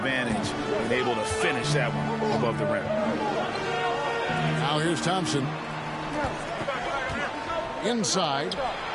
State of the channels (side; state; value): both; identical; correlation 1.00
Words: and able to finish that one above the rim. Now here's Thompson. Inside.